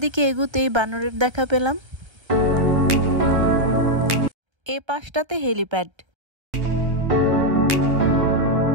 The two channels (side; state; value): left; late; 1.2 ms